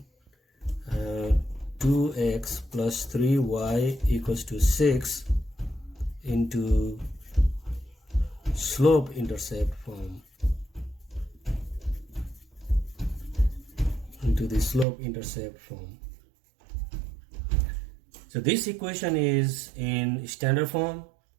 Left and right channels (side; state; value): left; drops out; at 14.9 s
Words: 2x plus 3y equals to 6 into slope intercept form, So this equation is in standard form